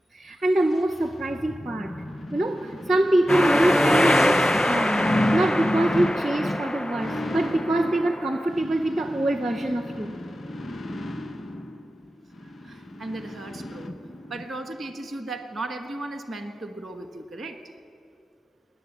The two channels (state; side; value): normal; both; correlation 0.92